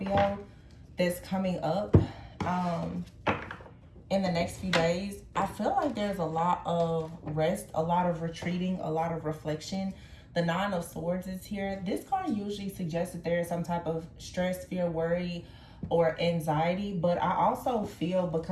that's coming up in the next few days. I feel like there's a lot of rest, a lot of retreating, a lot of reflection. The Nine of Swords is here. This card usually suggests that there is some type of stress, fear, worry, or anxiety. But I also feel,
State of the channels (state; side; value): identical; both; correlation 1.00